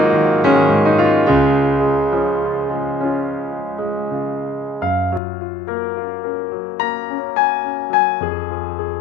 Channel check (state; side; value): drops out; right; at 5.2 s